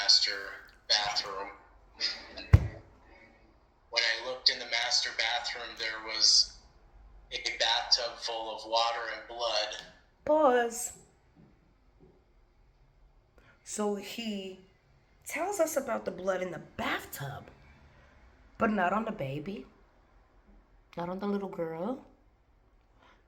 bathroom. And when I looked in the master bathroom, there was a bathtub full of water and blood. Pause. So he tells us about the blood in the bathtub, but not on the baby. Not on the little girl.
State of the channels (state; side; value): identical; both; correlation 1.00